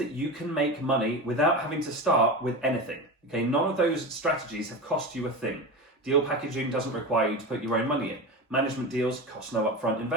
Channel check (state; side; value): normal; both; correlation 0.24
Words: you can make money without having to start with anything. Okay, none of those strategies have cost you a thing. Deal packaging doesn't require you to put your own money in. Management deals cost no upfront